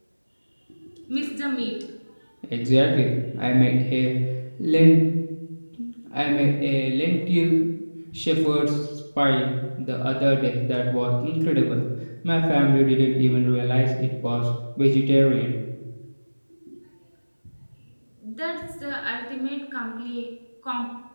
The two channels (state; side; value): inverted; both; correlation -1.00